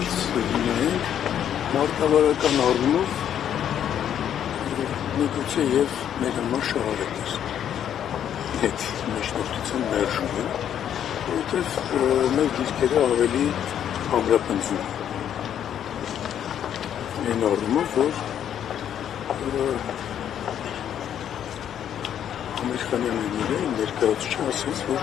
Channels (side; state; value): right; quieter; 9.7 dB